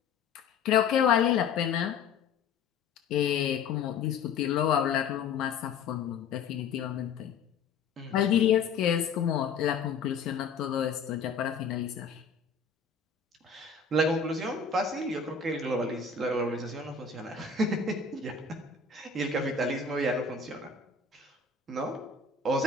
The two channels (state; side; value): quieter; right; 5.4 dB